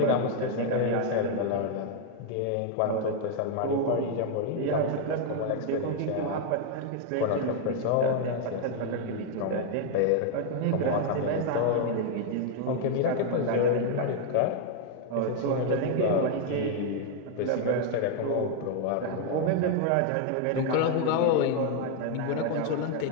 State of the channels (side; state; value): both; different; correlation 0.00